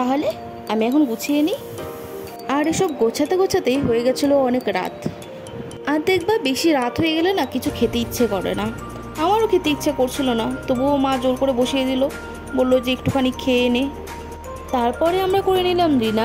আমি এখন গুছিয়ে নিই। আর এসব গোছাতে গোছাতেই হয়ে গেছিলো অনেক রাত। আর দেখবা বেশি রাত হয়ে গেলে না কিছু খেতে ইচ্ছে করে না। আমারও খেতে ইচ্ছে করছিল না, তবুও মা জোর করে বসিয়ে দিল, বললো যে একটুখানি খেয়ে নে। তারপরে আমরা করে নিলাম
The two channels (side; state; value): both; identical; correlation 1.00